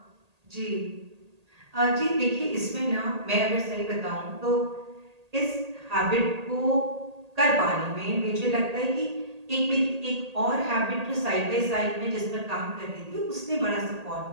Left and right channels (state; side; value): late; left; 1.8 ms